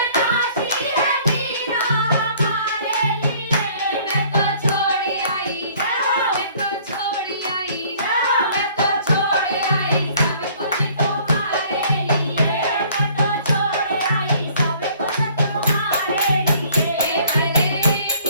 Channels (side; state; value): both; inverted; correlation -0.56